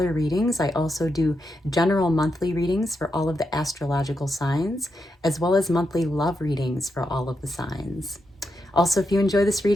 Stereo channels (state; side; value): normal; both; correlation 0.84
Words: readings. I also do general monthly readings for all of the astrological signs, as well as monthly love readings for all of the signs. Also, if you enjoy this